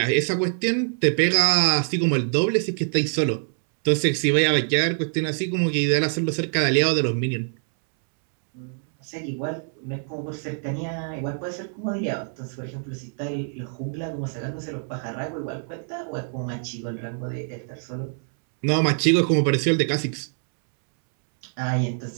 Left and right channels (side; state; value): left; silent; 62 dB below the other